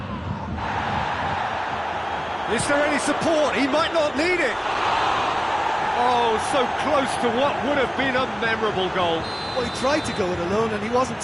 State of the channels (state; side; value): identical; both; correlation 1.00